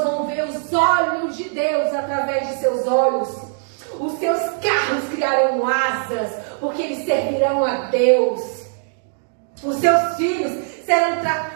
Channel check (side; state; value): left; silent; digital silence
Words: vão ver os olhos de Deus através de seus olhos. Os seus carros criarão asas, porque eles servirão a Deus. Os seus filhos serão